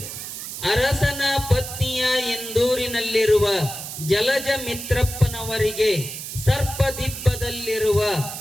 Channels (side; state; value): right; noise; hiss, 8 dB below the sound